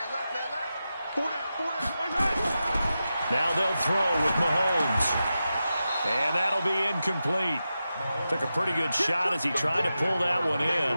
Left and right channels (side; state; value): both; inverted; correlation -0.91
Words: left, man left. 4 down. Now they'll throw with Mahomes. And that'll be incomplete. Took a pretty good shot as he tried to pull that one